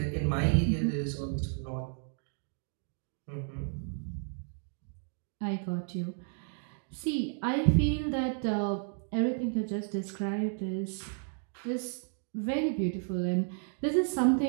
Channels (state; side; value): silent; left; 56 dB below the other